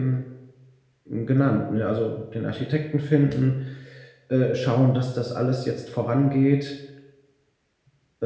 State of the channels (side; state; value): both; identical; correlation 1.00